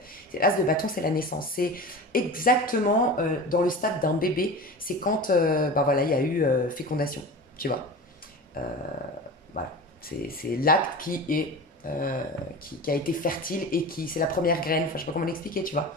L'as de bâton, c'est la naissance. C'est exactement dans le stade d'un bébé, c'est quand voilà, il y a eu fécondation, tu vois. Voilà, c'est l'acte qui a été fertile et c'est la première graine, enfin je sais pas comment l'expliquer, tu vois.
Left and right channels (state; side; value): normal; both; correlation 0.32